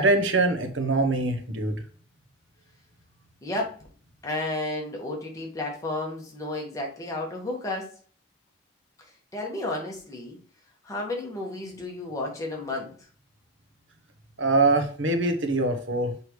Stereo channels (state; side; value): normal; both; correlation 0.02